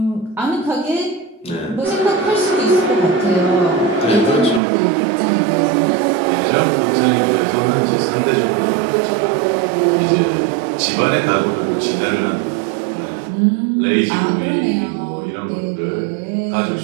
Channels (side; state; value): left; drops out; at 4.6 s